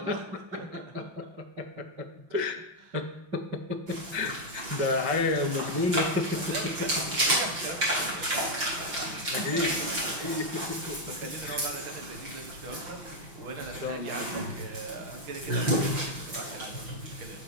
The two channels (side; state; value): left; late; 5.8 ms